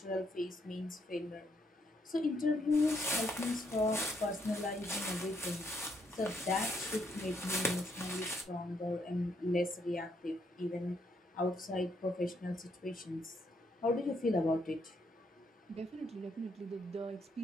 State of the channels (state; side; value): normal; both; correlation 0.74